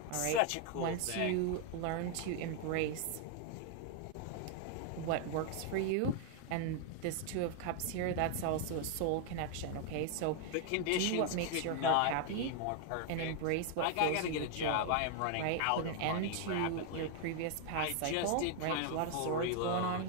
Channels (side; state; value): both; different; correlation 0.00